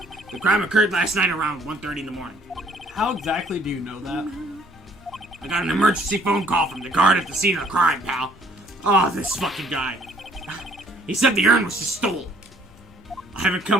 The crime occurred last night around 1:30 in the morning. How exactly do you know that? I got an emergency phone call from the guard at the scene of the crime, pal. Oh, this fucking guy. He said the urn was just stolen. I haven't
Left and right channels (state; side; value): normal; both; correlation 0.61